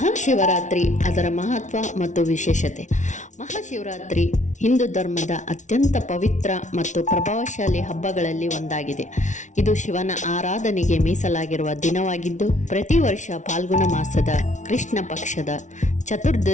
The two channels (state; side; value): late; right; 0.36 ms